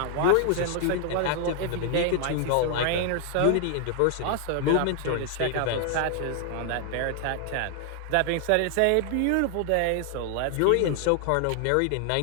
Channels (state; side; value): different; both; correlation 0.00